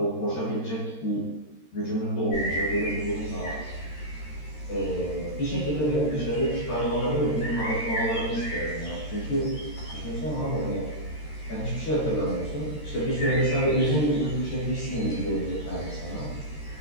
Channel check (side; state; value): right; late; 13 ms